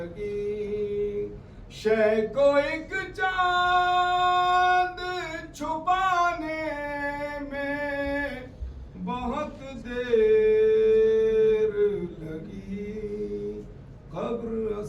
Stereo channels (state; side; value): identical; both; correlation 1.00